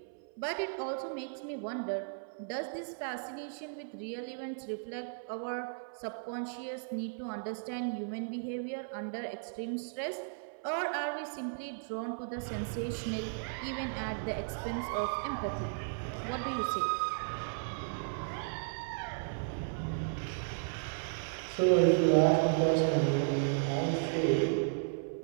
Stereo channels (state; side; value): silent; left; 54 dB below the other